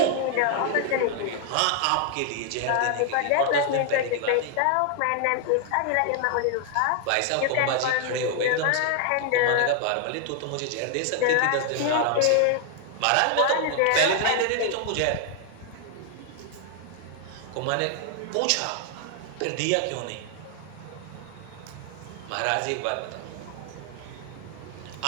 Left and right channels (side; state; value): both; different; correlation 0.00